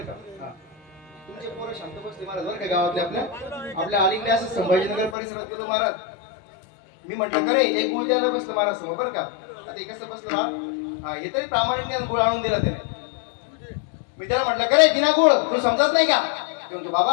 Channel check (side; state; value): right; drops out; at 5.2 s